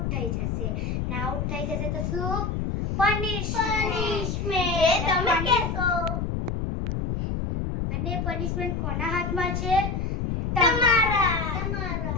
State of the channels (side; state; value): left; noise; rumble, 1 dB below the sound